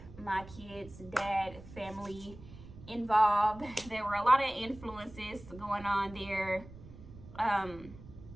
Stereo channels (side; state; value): right; noise; rumble, 17 dB below the sound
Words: my kids' dad family involved. There were a lot of influences going on there.